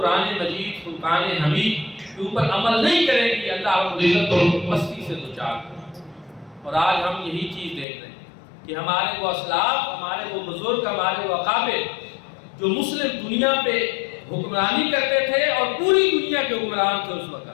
مجید فرقان حمید کے اوپر عمل نہیں کریں گی اللہ رب العزت کو مستی سے دوچار کرے۔ اور آج ہم یہی چیز دیکھ رہے ہیں کہ ہمارے وہ اسلاف، ہمارے وہ بزرگ، ہمارے وہ اکابر جو مسلم دنیا پہ حکمرانی کرتے تھے اور پوری دنیا کے حکمران تھے اس وقت،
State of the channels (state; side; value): drops out; right; at 7.9 s